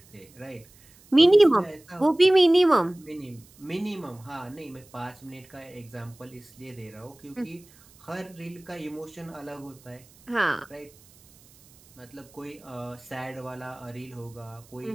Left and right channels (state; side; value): noise; right; hiss, 27 dB below the sound